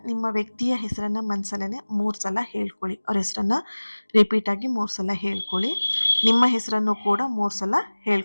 ನಿಮ್ಮ ವ್ಯಕ್ತಿಯ ಹೆಸರನ್ನ ಮನಸ್ಸಲ್ಲೇ 3 ಸಲ ಹೇಳ್ಕೊಳ್ಳಿ. ಅವ್ರ ಹೆಸರನ್ನ ರಿಪೀಟ್ ಆಗಿ 3 ಸಲ ಹೇಳ್ಕೊಳ್ಳಿ. ನಿಮ್ಮ ಹೆಸರನ್ನು ಕೂಡ 3 ಸಲ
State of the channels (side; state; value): both; inverted; correlation -1.00